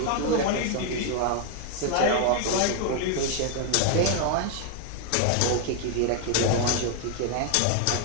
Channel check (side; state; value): both; different; correlation 0.00